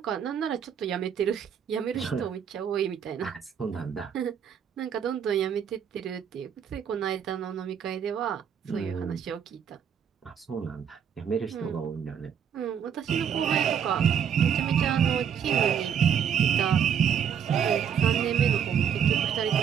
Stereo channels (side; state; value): left; quieter; 8.1 dB